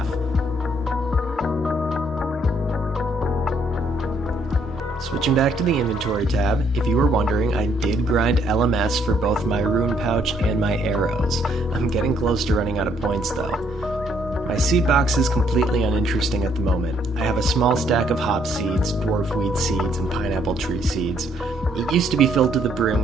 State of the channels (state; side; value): normal; both; correlation 0.68